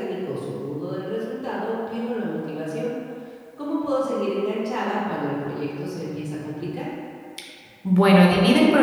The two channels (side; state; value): both; identical; correlation 1.00